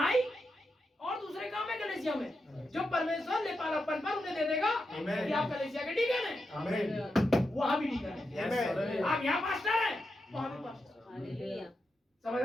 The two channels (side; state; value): both; normal; correlation 0.87